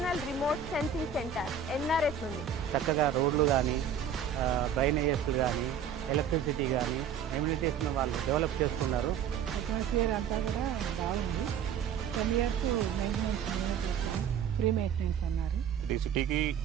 remote sensing centre NRS ఉంది. చక్కగా రోడ్లు కానీ డ్రైనేజెస్ కానీ ఎలక్ట్రిసిటీ కానీ ఎమ్యూనిటీస్ను వాళ్ళు డెవలప్ చేస్తున్నారు. అట్మాస్ఫియర్ అంతా కూడా బాగుంది. 10 years మెయింటెనెన్స్ ఫ్రీ మెయింటెనెన్స్ అన్నారు. ఇది సిటీకి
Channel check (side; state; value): left; quieter; 7.6 dB